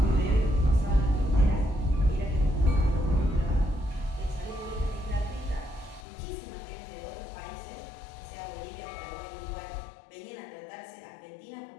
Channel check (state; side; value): drops out; right; at 6.1 s